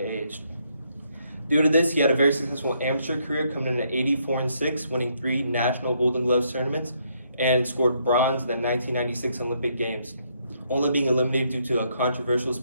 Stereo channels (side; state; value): both; inverted; correlation -0.73